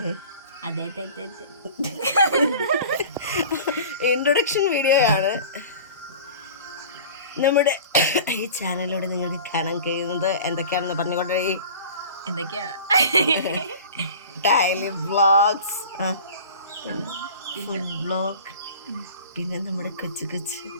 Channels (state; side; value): inverted; both; correlation -0.40